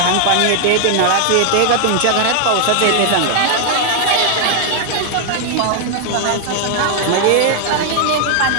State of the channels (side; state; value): both; different; correlation 0.00